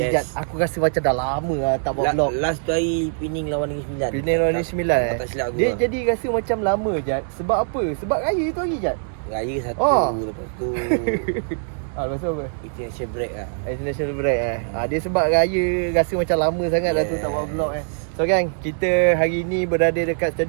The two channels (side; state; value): left; silent; digital silence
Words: Jad. Aku rasa macam dah lama tak buat vlog. Last tu hari Pening lawan Negeri Sembilan. Pening lawan Negeri Sembilan Tak silap aku. Dia jadi rasa macam lama, Jad. Sebab apa? Sebab raya tu hari, Jad. Raya satu, lepas tu lepas tu apa? international break lah. International break dia sebab raya rasa macam lama sangat dah tu tak buat vlog So gang, kita hari ni berada dekat